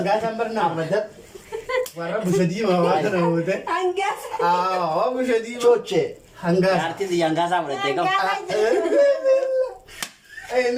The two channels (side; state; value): both; identical; correlation 1.00